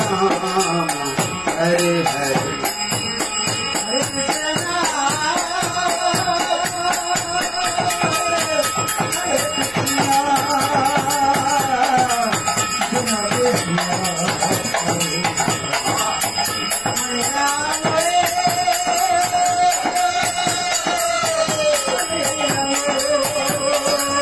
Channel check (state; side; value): noise; left; rumble, 25 dB below the sound